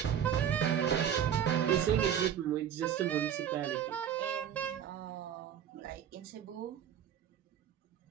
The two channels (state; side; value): quieter; left; 9.1 dB